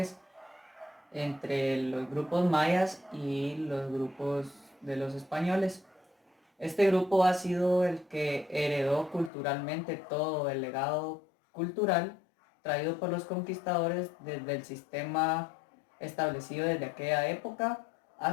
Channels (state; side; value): drops out; right; at 9.3 s